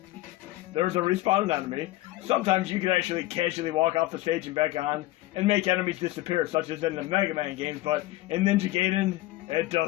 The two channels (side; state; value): right; quieter; 17.5 dB